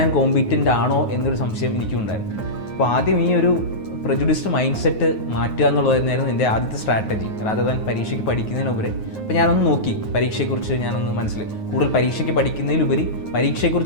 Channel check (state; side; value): late; right; 9.4 ms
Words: കോമ്പീറ്റൻ്റ് ആണോ എന്നൊരു സംശയം എനിക്കും ഉണ്ടായിരുന്നു. അപ്പോൾ ആദ്യം ഈ ഒരു പ്രജുഡിസ്ഡ് മൈൻഡ് സെറ്റ് മാറ്റുക എന്നുള്ളതായിരുന്നു എൻ്റെ ആദ്യത്തെ സ്ട്രാറ്റജി, റാദർ ദാൻ പരീക്ഷയ്ക്ക് പഠിക്കുന്നതിനുപരി. അപ്പോൾ ഞാനൊന്ന് നോക്കി പരീക്ഷയെക്കുറിച്ച് ഞാനൊന്ന് കൂടുതൽ പരീക്ഷയ്ക്ക് പഠിക്കുന്നതിലുപരി